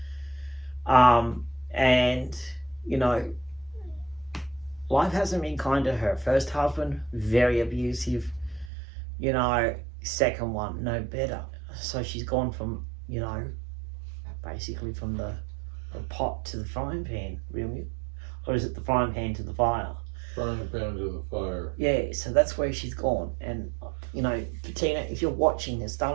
And, you know, life hasn't been kind to her. First husband, very abusive. You know, second one, no better. So she's gone from, you know, basically from the pot to the frying pan, really. Or is it the frying pan to the fire? Frying pan to the fire. Yeah, so that's where she's gone. And, you know, Bettina, if you're watching this,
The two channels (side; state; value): left; drops out; at 8.7 s